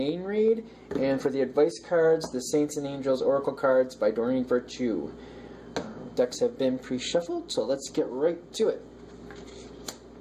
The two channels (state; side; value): identical; both; correlation 1.00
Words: read, and for the advice cards, the Saints and Angels Oracle cards by Doreen Virtue. Decks have been pre-shuffled, so let's get right to it.